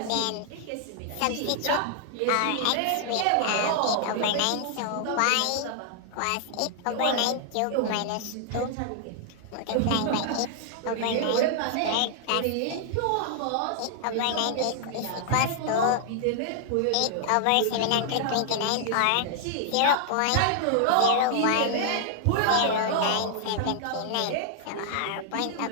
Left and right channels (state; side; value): different; both; correlation 0.00